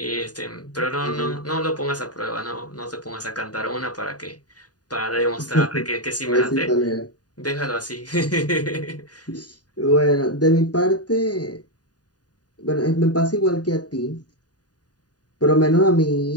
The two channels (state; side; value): late; right; 0.68 ms